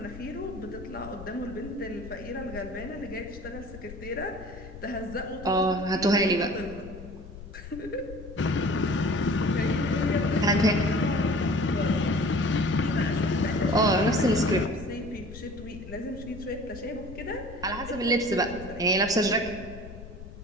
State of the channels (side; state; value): left; noise; rumble, 14 dB below the sound